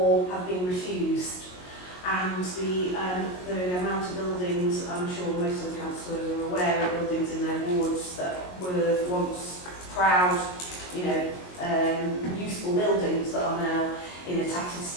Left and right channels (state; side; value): late; right; 22 ms